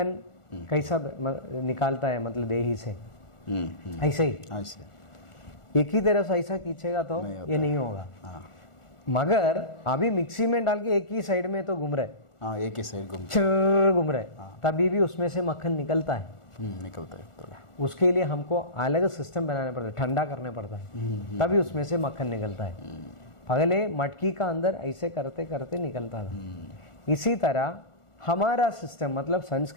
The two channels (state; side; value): late; right; 1.4 ms